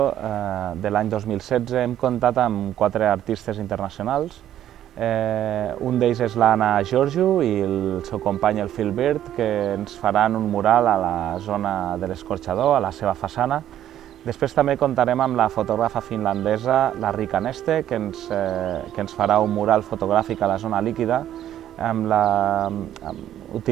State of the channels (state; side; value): quieter; left; 11.4 dB